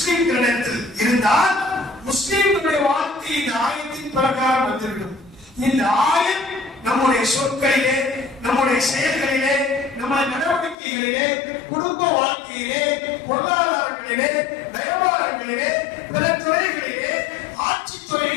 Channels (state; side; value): drops out; right; at 10.8 s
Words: இருந்தால் முஸ்லிம்களுடைய வாழ்க்கை இந்த ஆயத்தின் பிரகாரம் வந்துவிடும். இந்த ஆயம் நம்முடைய சொற்களிலே, நம்முடைய செயல்களிலே, நம்முடைய நடவடிக்கைகளிலே, குடும்ப வாழ்க்கையிலே, பொருளாதாரங்களிலே, வியாபாரங்களிலே, பிற துறைகளிலே, ஆட்சி